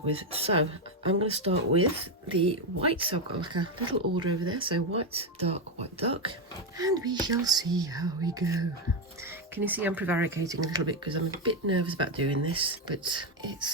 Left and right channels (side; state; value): both; normal; correlation 0.07